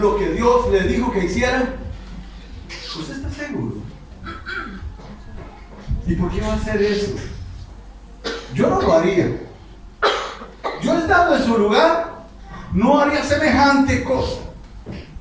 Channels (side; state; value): both; identical; correlation 1.00